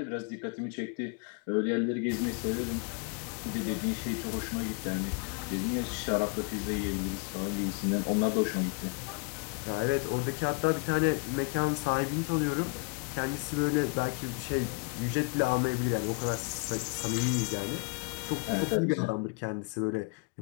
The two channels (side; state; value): right; quieter; 33.1 dB